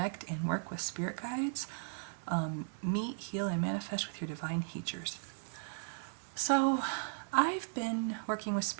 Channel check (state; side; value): silent; left; digital silence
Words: and Work with Spirit Guides. Meet, Heal, and Manifest with Your Divine Teachers. So I've been working with